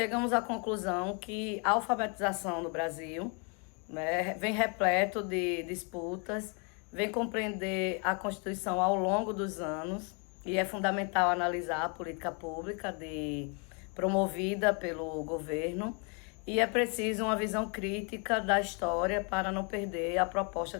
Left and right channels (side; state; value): right; quieter; 35.6 dB